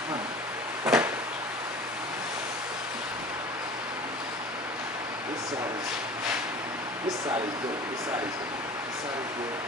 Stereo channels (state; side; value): normal; both; correlation 0.40